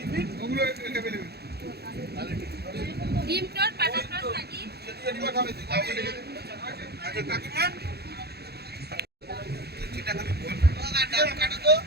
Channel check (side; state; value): left; late; 0.47 ms